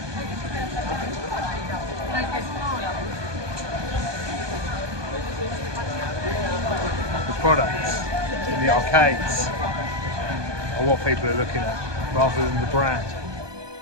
the products in in the arcades are what people are looking at rather than the brand.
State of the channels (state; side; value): late; left; 1.2 ms